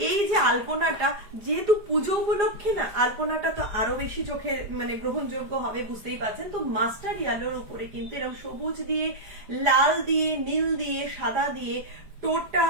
এই যে আলপনাটা, যেহেতু পুজো উপলক্ষে না, আলপনাটা তো আরো বেশি চোখে মানে গ্রহণযোগ্য হবে, বুঝতেই পারছেন। তো মাস্টার ইয়েলোর উপরে কিন্তু এরকম সবুজ দিয়ে, লাল দিয়ে, নীল দিয়ে, সাদা দিয়ে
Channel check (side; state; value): left; late; 4.9 ms